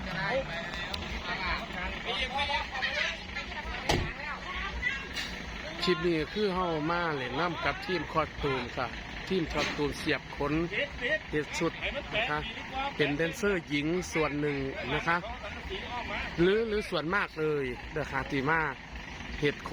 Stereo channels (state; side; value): identical; both; correlation 1.00